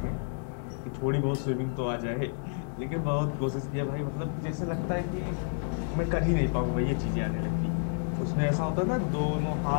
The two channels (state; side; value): silent; right; digital silence